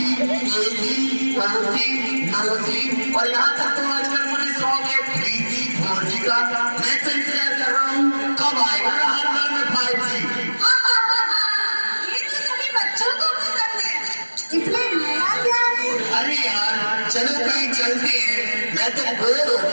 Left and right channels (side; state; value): both; inverted; correlation -1.00